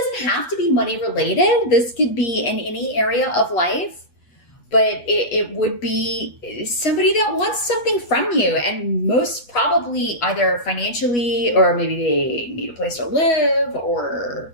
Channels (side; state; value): right; late; 8.2 ms